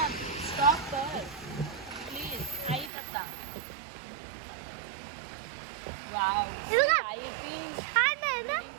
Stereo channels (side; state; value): left; drops out; at 2.9 s